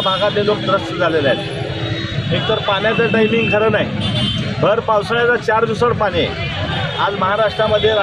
लोक त्रस्त झालेले आहेत। एकतर पाण्याचं टायमिंग खरं नाही, भर पावसाळ्याचं 4 दिवसाड पाणी आहे। आज महाराष्ट्रामध्ये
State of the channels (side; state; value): left; noise; hum, 26 dB below the sound